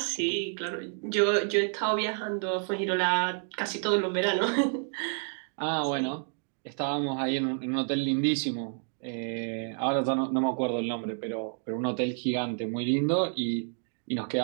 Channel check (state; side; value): silent; left; 55 dB below the other